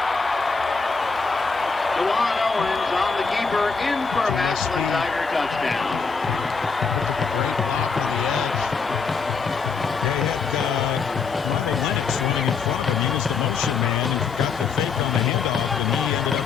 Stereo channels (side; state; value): right; quieter; 5.1 dB